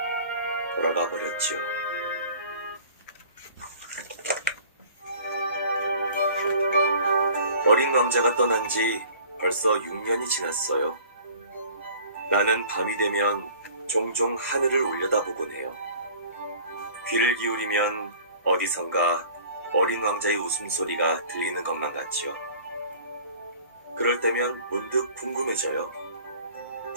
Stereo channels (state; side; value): inverted; both; correlation -0.48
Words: 돌아가 버렸지요. 어린 왕자가 떠난 지 벌써 6년이 지났어요. 나는 밤이 되면 종종 하늘을 올려다보곤 해요. 귀를 기울이면 어디선가 어린 왕자의 웃음소리가 들리는 것만 같지요. 그럴 때면 문득 궁금해져요.